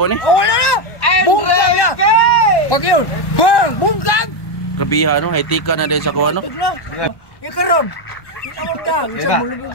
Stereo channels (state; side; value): late; right; 1.1 ms